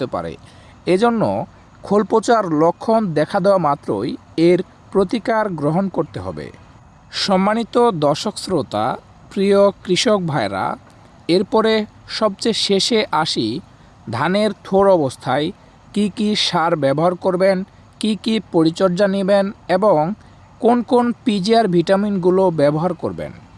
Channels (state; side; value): identical; both; correlation 1.00